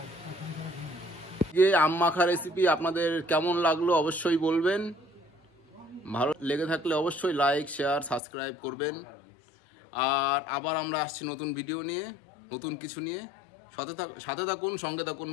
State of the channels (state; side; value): drops out; right; at 8.2 s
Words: আম মাখা রেসিপি আপনাদের কেমন লাগলো অবশ্যই বলবেন। ভালো লেগে থাকলে অবশ্যই লাইক, শেয়ার, সাবস্ক্রাইব করবেন। আর আবার আমরা আসছি নতুন ভিডিও নিয়ে, নতুন কিছু নিয়ে। সাথে থাকুন, সঙ্গে থাকুন